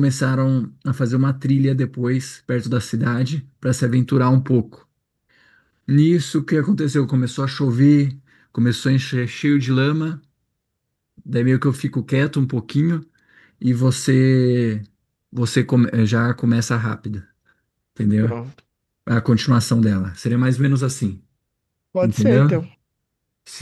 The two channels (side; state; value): both; identical; correlation 1.00